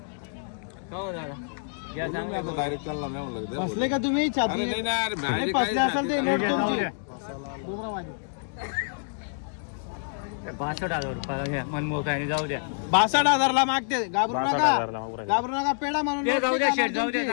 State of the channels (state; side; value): silent; right; digital silence